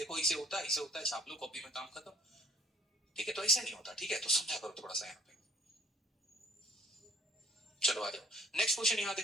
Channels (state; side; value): normal; both; correlation 0.56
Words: इसे होता है, इसे होता है, छाप लो कॉपी में, काम खत्म। ठीक है, तो ऐसा नहीं होता। ठीक है, तो समझा करो थोड़ा सा यहाँ पे। चलो आ जाओ नेक्स्ट क्वेश्चन, यहाँ